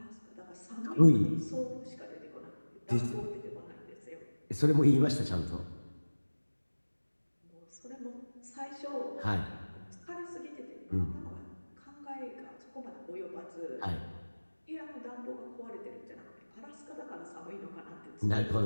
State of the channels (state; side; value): inverted; both; correlation -1.00